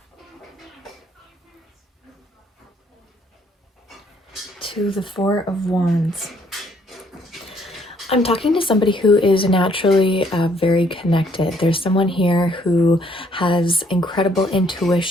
To the Four of Wands. I'm talking to somebody who is naturally very connected. There's someone here who has incredible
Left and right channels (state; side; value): normal; both; correlation 0.66